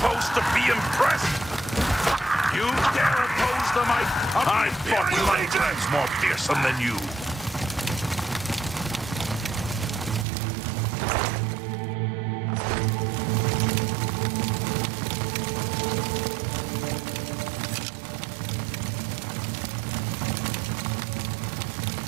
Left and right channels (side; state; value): left; drops out; at 10.2 s